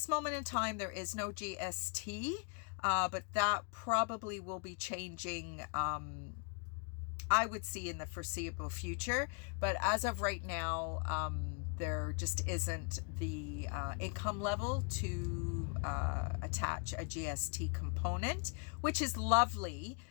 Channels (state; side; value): quieter; right; 38.2 dB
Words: moment in time, there is no GST, but that probably will be changing. I would see in the foreseeable future, but as of right now, there just isn't the income level to attach a GST component, which is lovely,